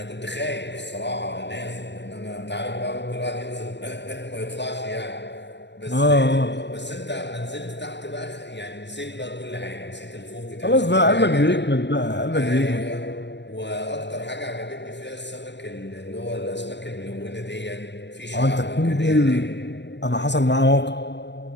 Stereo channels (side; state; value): right; late; 0.51 ms